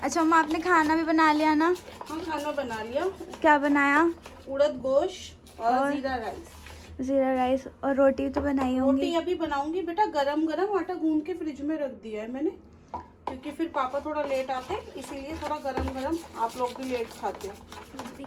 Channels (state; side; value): identical; both; correlation 1.00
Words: मम्मा आपने खाना भी बना लिया ना? हाँ खाना बना लिया। क्या बनाया? उड़द गोश्त और जीरा राइस। जीरा राइस और रोटी तो बनाई होंगी। रोटी अभी बनाऊंगी बेटा, गरम गरम आटा गूंद के फ्रिज में रख दिया है मैंने, क्योंकि फिर पापा थोड़ा लेट आते हैं, इसीलिए थोड़ा गरम गरम। आप लोग भी लेट खाते हो